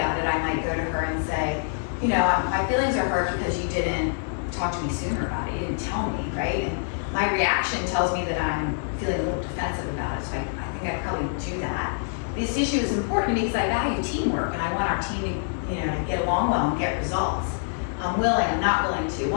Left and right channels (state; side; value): silent; right; 61 dB below the other